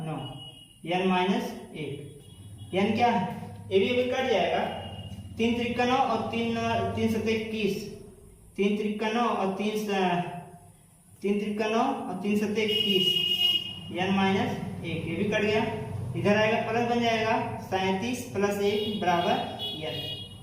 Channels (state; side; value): identical; both; correlation 1.00